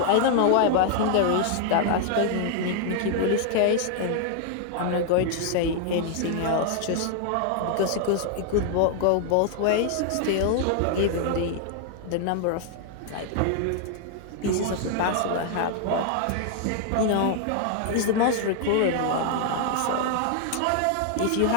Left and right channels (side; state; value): both; different; correlation 0.00